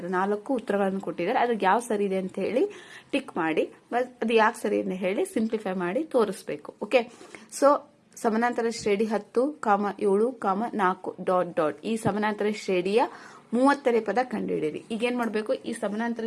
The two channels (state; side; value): identical; both; correlation 1.00